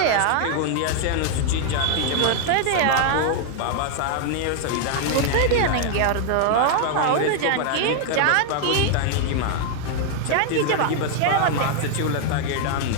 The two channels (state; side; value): different; both; correlation 0.00